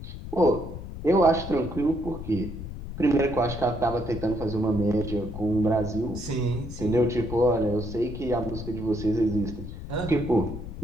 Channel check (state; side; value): noise; left; rumble, 9 dB below the sound